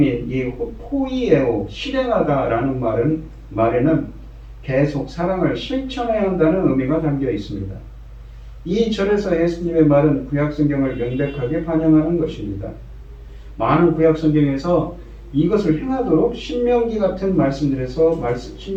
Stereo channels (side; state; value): both; identical; correlation 1.00